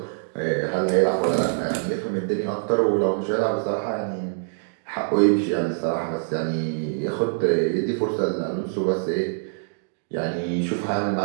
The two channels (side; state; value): left; silent; digital silence